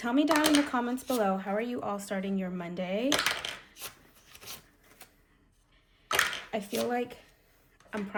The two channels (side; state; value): both; identical; correlation 1.00